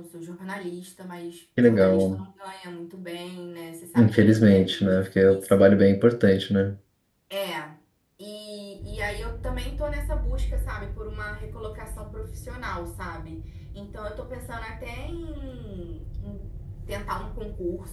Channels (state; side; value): identical; both; correlation 1.00